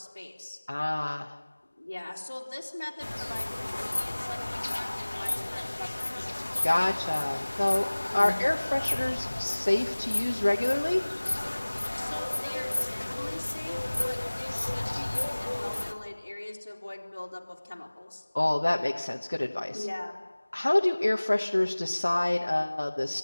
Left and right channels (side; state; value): both; inverted; correlation -1.00